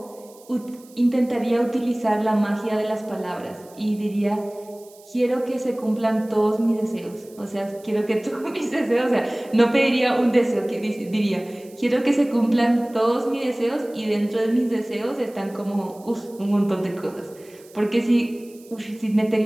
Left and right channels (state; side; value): noise; right; hiss, 25 dB below the sound